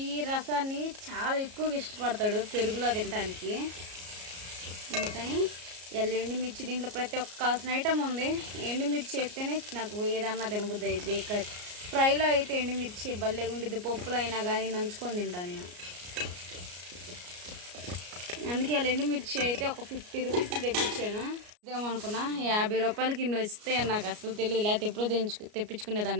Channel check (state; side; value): late; left; 33 ms